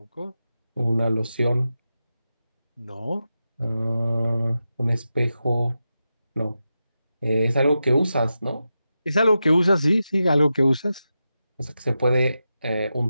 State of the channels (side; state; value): both; inverted; correlation -0.90